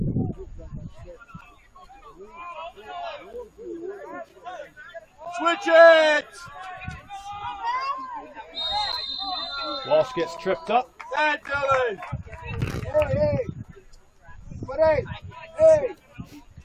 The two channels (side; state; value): both; identical; correlation 1.00